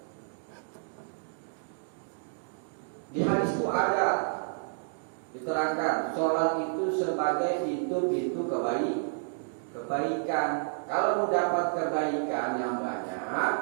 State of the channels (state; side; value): silent; left; digital silence